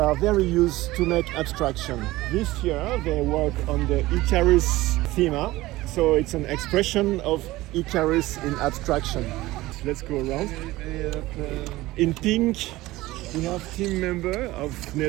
very used to make abstraction. This year they work on the Icarus theme, so it's an expression of Icarus in abstraction. Let's go around. In pink, we have team member of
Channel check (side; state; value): left; quieter; 18.2 dB